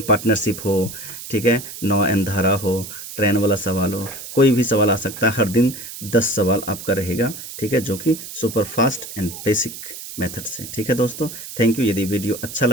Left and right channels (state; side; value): noise; right; hiss, 11 dB below the sound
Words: हो, ठीक है, नौ एन धारा हो, ट्रेन वाला सवाल हो, कोई भी सवाल आ सकता है। हर दिन 10 सवाल आपका रहेगा। ठीक है, जो कि super fast and basic method से। ठीक है दोस्तों, थैंक यू। यदि वीडियो अच्छा